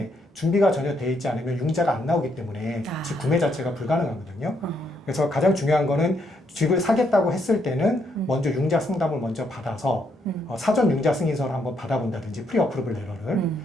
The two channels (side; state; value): both; normal; correlation 0.75